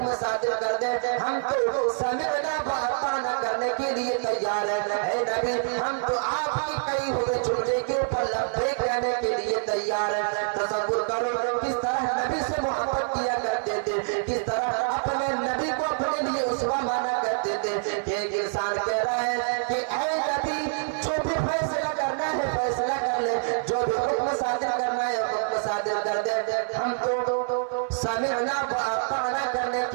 صادر کر دیں، ہم تو سمعنا واطعنا کرنے کے لیے تیار ہیں۔ اے نبی، ہم تو آپ کی کہی ہوئے جملے کے اوپر لبیک کہنے کے لیے تیار ہیں۔ تصور کرو کس طرح نبی سے محبت کیا کرتے تھے، کس طرح اپنے نبی کو اپنے لیے اسوہ مانا کرتے تھے کہ ایک انسان کہہ رہا ہے کہ اے نبی، جو بھی فیصلہ کرنا ہے فیصلہ کر لے، جو بھی حکم صادر کرنا ہے حکم صادر کر دے، ہم تو سمعنا واطعنا کرنے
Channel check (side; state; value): left; silent; 61 dB below the other